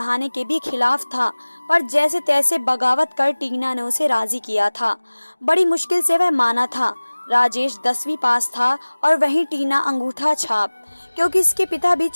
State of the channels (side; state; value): both; inverted; correlation -1.00